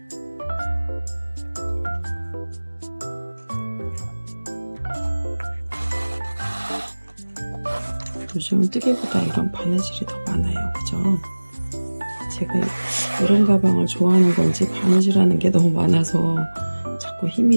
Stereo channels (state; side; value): inverted; both; correlation -1.00